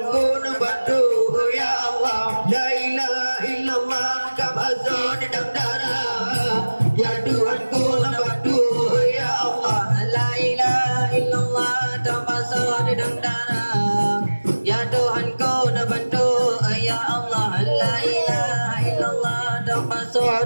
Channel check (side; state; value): both; inverted; correlation -1.00